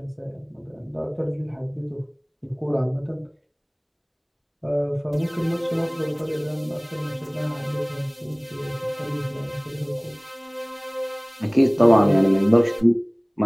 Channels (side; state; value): both; identical; correlation 1.00